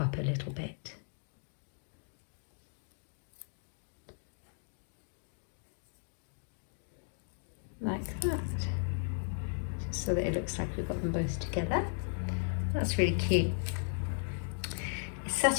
a little bit. Like that. Just so that it looks like we've got them both together. That's really cute. It's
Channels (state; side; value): silent; right; digital silence